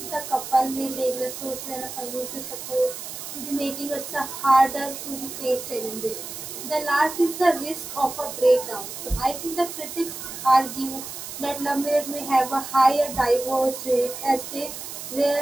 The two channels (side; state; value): right; noise; hiss, 9 dB below the sound